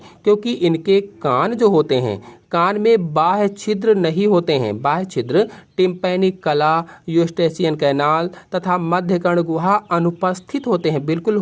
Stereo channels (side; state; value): both; identical; correlation 1.00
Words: क्योंकि इनके कान जो होते हैं, कान में बाह्य छिद्र नहीं होते हैं। बाह्य छिद्र टिम्पैनिक कला, यूस्टेशियन कैनाल तथा मध्य कर्ण गुहा अनुपस्थित होते हैं, बिल्कुल